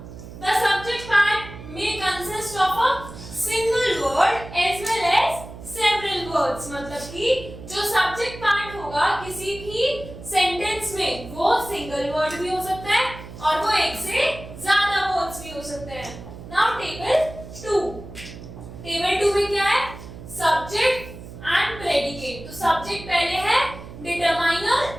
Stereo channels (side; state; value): right; noise; hum, 14 dB below the sound